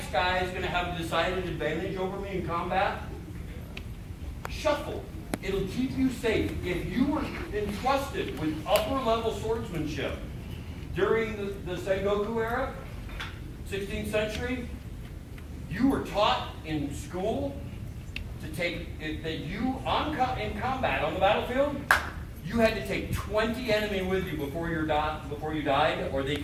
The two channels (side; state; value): both; identical; correlation 1.00